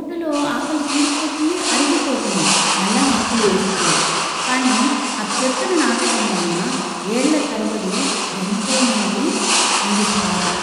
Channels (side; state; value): both; identical; correlation 1.00